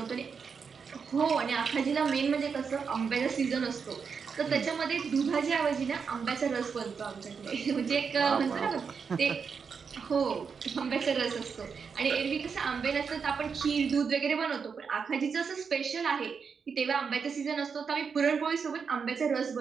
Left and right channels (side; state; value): left; quieter; 5.9 dB